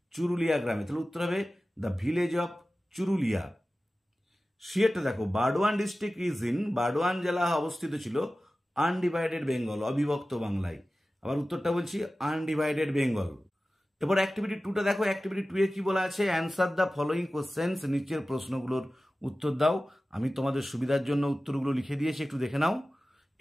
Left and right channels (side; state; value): both; normal; correlation 0.96